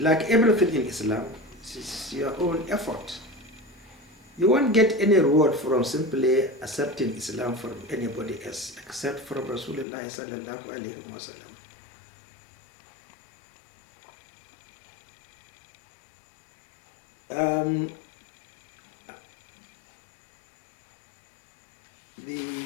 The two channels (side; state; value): right; drops out; at 9.9 s